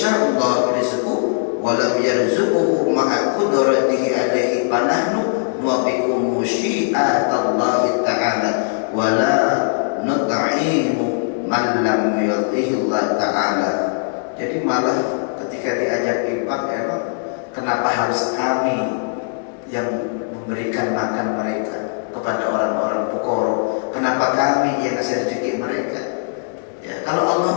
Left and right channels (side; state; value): right; silent; 62 dB below the other